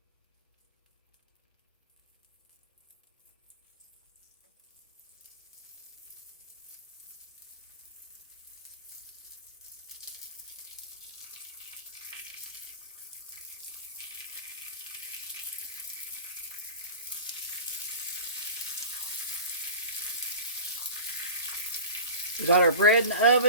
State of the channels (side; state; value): both; inverted; correlation -0.36